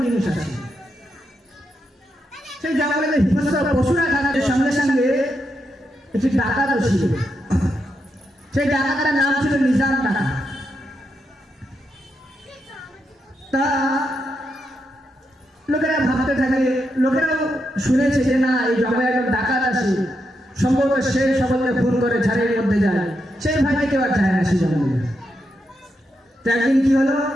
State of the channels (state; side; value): normal; both; correlation 0.83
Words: জিনিস আছে। সেই জঙ্গলে হিংস্র পশুরা থাকার সঙ্গে সঙ্গে একটি ডাকাতও ছিল। সেই ডাকাতের নাম ছিল নিজাম ডাকাত। তা লোকেরা ভাবতে থাকে, লোকেরাও শুনেছে যে না এই জঙ্গলে একজন ডাকাত আছে, সম্ভবত সে সকলকে খুন করে ঝাড়ের মধ্যে যায়, সেই ভাইকে কেউ আর যায় না সেই জঙ্গলে। তো একদিন কি হলো,